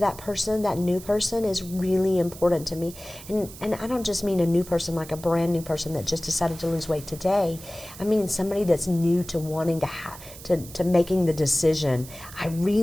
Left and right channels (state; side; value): noise; right; hiss, 16 dB below the sound